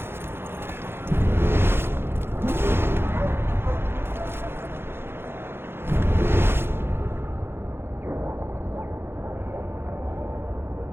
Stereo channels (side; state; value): left; late; 0.11 ms